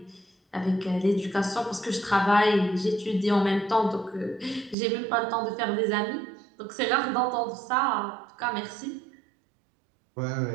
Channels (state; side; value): drops out; left; at 4.8 s